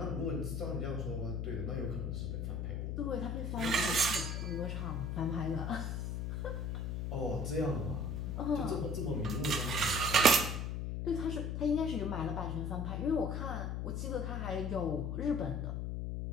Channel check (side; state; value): left; noise; hum, 2 dB below the sound